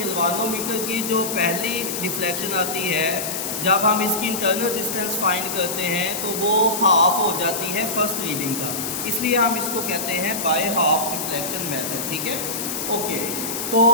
की जो पहली डिफ्लेक्शन आती है, जब हम इसकी इंटरनल रेजिस्टेंस फाइंड करते हैं तो वो हाफ हो जाती है फर्स्ट रीडिंग का, इसलिए हम इसको कहते हैं बाय हाफ डिफ्लेक्शन मेथड। ठीक है, ओके। तो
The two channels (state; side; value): noise; left; hiss, 4 dB below the sound